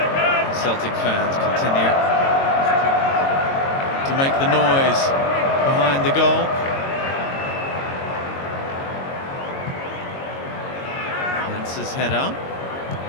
Celtic fans continue to make the noise behind the goal. His header.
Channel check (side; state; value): right; late; 22 ms